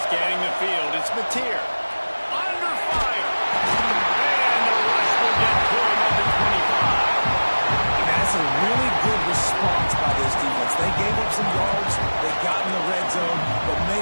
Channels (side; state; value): both; inverted; correlation -1.00